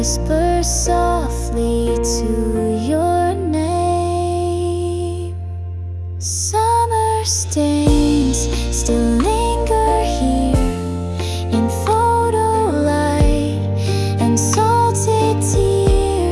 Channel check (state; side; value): identical; both; correlation 1.00